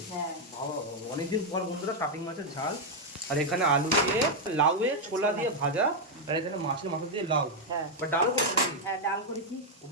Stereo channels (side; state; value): both; normal; correlation 0.00